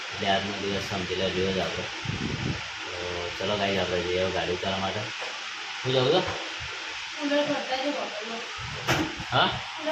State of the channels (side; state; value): both; identical; correlation 1.00